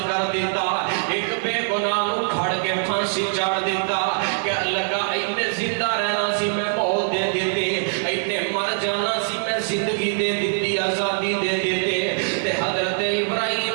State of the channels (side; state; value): left; silent; digital silence